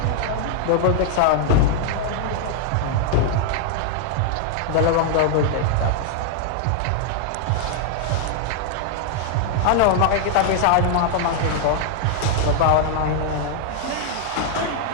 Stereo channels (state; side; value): different; both; correlation -0.01